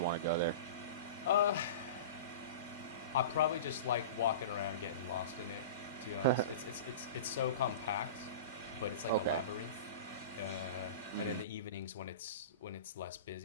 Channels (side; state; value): both; inverted; correlation -0.33